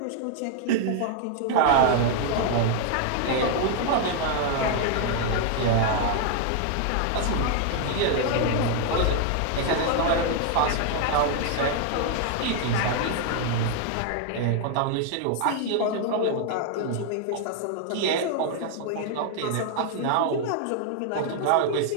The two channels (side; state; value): both; different; correlation 0.00